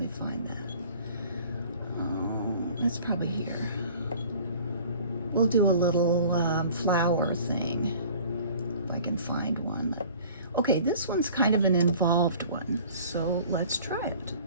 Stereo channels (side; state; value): both; inverted; correlation -0.47